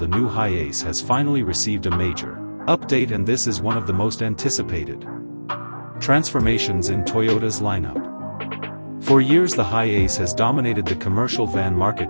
new HiAce has finally received a major update, and this is one of the most anticipated transformations in Toyota's lineup. For years the HiAce has dominated the commercial van market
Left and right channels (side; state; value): both; inverted; correlation -1.00